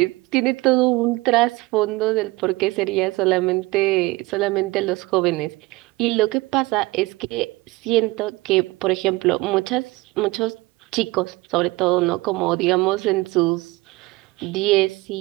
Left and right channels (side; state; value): left; quieter; 21.8 dB